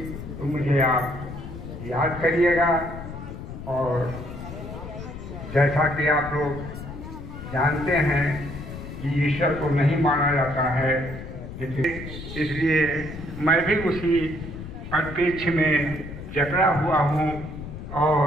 तो मुझे आप याद करिएगा। और जैसा कि आप लोग जानते हैं कि ईश्वर को नहीं माना जाता है, इसलिए मैं भी उसी परिप्रेक्ष्य में जकड़ा हुआ हूँ और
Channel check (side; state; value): left; noise; rumble, 10 dB below the sound